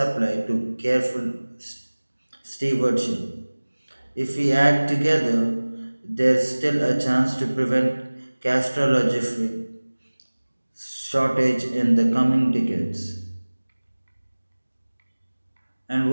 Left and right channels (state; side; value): inverted; both; correlation -1.00